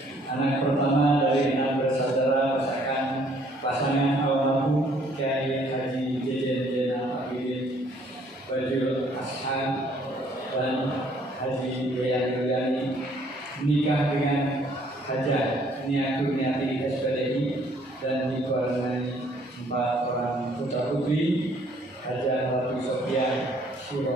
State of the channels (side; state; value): both; normal; correlation 0.62